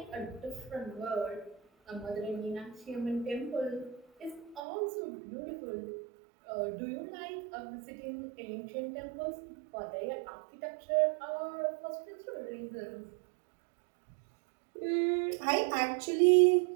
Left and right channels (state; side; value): drops out; left; at 4.6 s